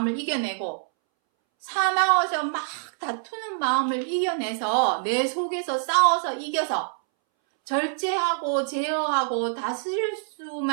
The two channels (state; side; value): silent; left; 61 dB below the other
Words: 이겨내고 사나워서 막 다투는 마음을 이겨내서 내 속에서 싸워서 이겨서 절제하고 제어하고 다스릴